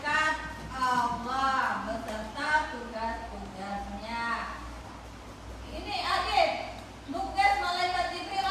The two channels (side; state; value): both; identical; correlation 1.00